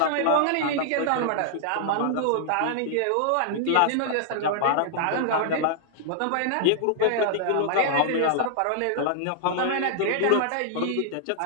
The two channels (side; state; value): both; different; correlation -0.01